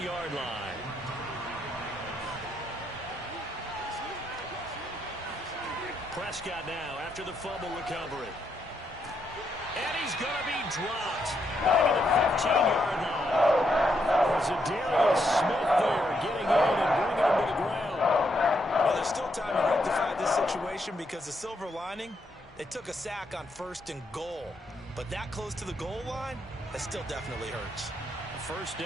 line. Prescott now after the fumble recovery. And he's going to be dropped back at the 15-yard line. Zadarius Smith there getting in and bringing him to the ground. Well, there's still time to rectify this situation because the silver lining, they took a sack on first and goal. But that close to the goal line, that still definitely hurts. First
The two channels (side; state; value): both; normal; correlation 0.78